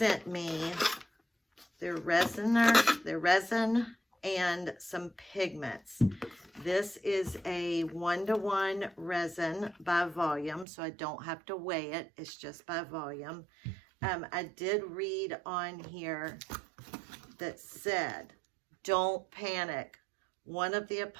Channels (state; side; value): drops out; left; at 10.7 s